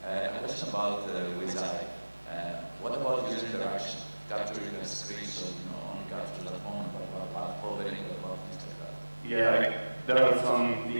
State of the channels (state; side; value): inverted; both; correlation -1.00